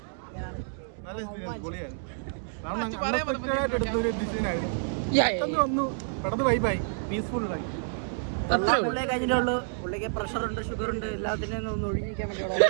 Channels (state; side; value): silent; left; digital silence